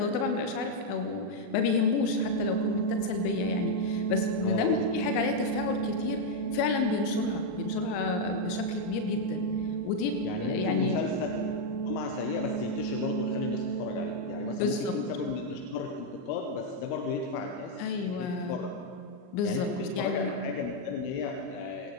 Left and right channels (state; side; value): late; right; 39 ms